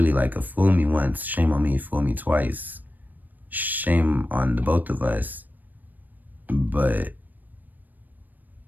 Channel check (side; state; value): left; late; 0.087 ms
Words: like a fool me once, shame on me, fool me twice. Shame on the both of us. But